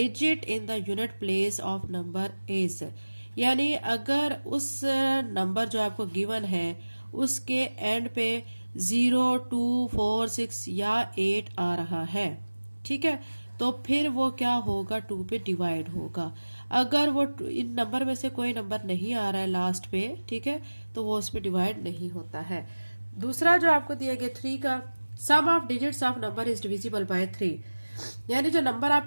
in the unit place of number is, यानी अगर उस नंबर जो आपको गिवन है उसके एंड पे 0, 2, 4, 6 या 8 आ रहा है, ठीक है, तो फिर वो क्या होगा, 2 पे डिवाइड होगा। अगर वो इन नंबर में से कोई नंबर नहीं आ रहा है लास्ट पे, ठीक है, तो वो उस पे डिवाइड नहीं होता है। दूसरा जो आपको दिया गया 3 का, sum of digits of number is divisible by 3, यानी जो नंबर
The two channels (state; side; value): inverted; both; correlation -1.00